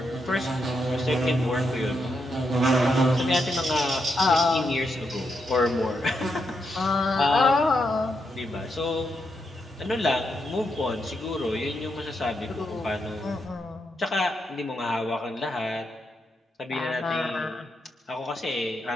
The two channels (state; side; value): normal; both; correlation 0.82